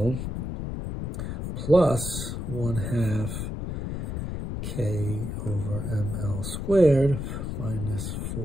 plus 1/2 k over ml squared minus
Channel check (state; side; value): noise; left; rumble, 4 dB below the sound